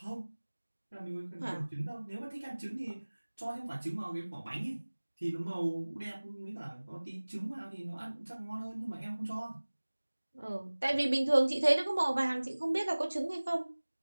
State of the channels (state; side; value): inverted; both; correlation -1.00